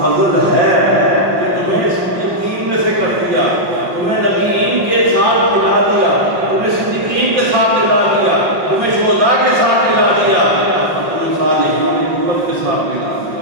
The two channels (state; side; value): late; left; 5.6 ms